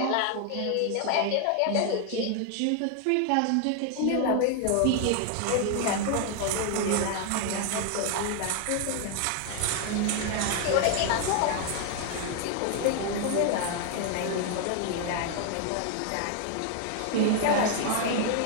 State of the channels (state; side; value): different; both; correlation 0.00